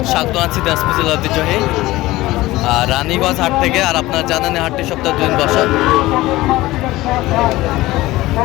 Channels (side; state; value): right; quieter; 18.1 dB